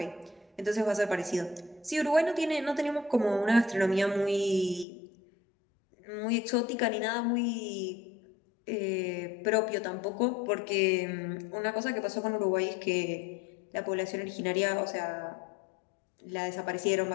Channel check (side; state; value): right; drops out; at 4.9 s